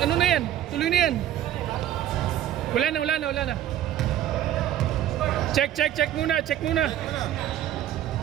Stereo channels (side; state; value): left; quieter; 11.8 dB